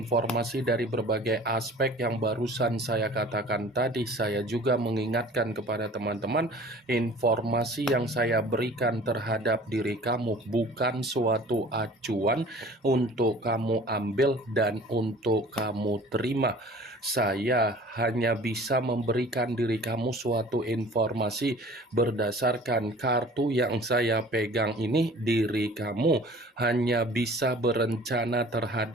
dari berbagai aspek yang barusan saya katakan tadi, saya juga mengingatkan kepada teman-teman, informasi yang saya berikan terhadap diri kamu bukan suatu acuan untuk kamu ambil dan untuk kamu terima. Saya hanya bisa memberikan diri kamu suatu informasi berdasarkan kartu yang saya pegang ini. Diri kamu hanya bisa berencana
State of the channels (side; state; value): both; normal; correlation 0.46